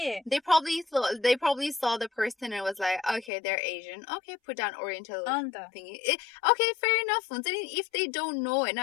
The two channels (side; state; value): right; drops out; at 3.3 s